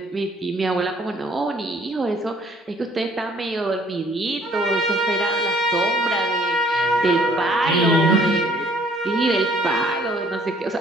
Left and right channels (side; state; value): both; normal; correlation 0.59